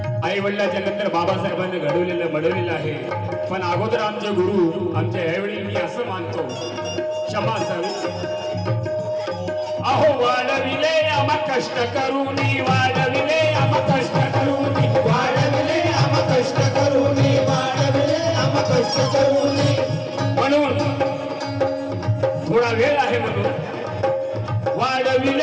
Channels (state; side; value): identical; both; correlation 1.00